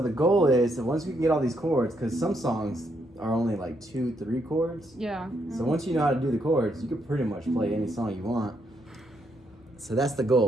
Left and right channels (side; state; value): both; normal; correlation 0.76